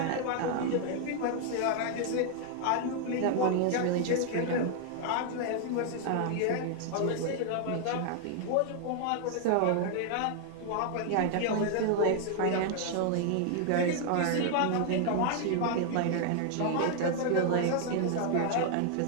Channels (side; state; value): both; different; correlation 0.00